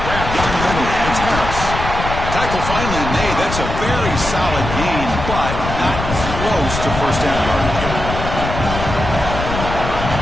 Grab down the middle. It's Harris. Tackle finally made. That's a very solid gain, but not close to first down yardage.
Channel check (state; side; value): noise; left; rumble, 5 dB below the sound